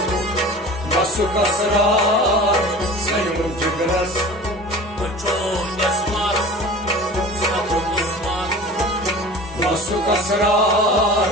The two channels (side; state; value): both; normal; correlation 0.39